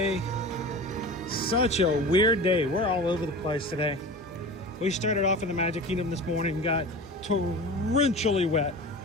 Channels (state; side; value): normal; both; correlation 0.33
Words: Such a weird day. We're all over the place today. We started off in the Magic Kingdom this morning, got torrentially wet.